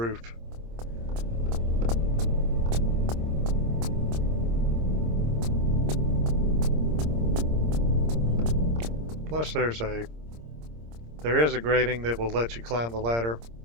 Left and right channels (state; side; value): late; left; 26 ms